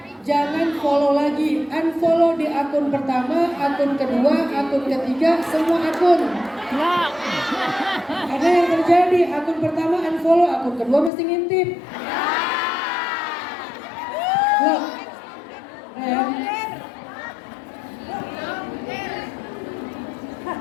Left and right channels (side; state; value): right; drops out; at 11.1 s